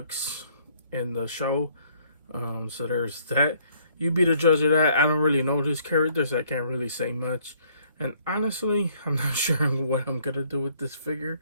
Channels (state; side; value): inverted; both; correlation -0.63